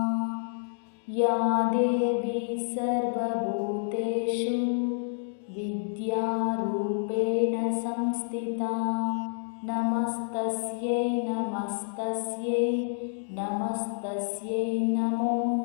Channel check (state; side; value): silent; right; digital silence